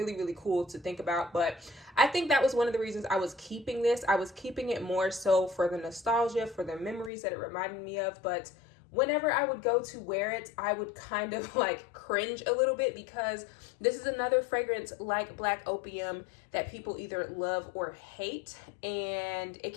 really cool to think about. But I think that was one of the reasons I was keeping this. I was keeping it more so for the nostalgia, for the memories that it reminded me of. But whenever I would go to wear it, I would kind of like cringe a little bit, because this is another fragrance like Black Opium that people either love or hate. And it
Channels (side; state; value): right; drops out; at 7.1 s